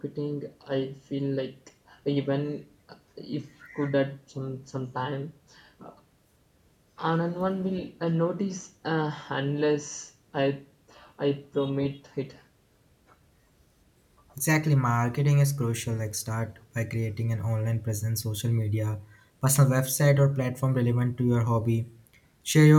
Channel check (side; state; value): both; identical; correlation 1.00